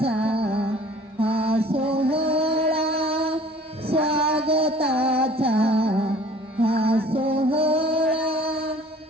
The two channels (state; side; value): normal; both; correlation 0.50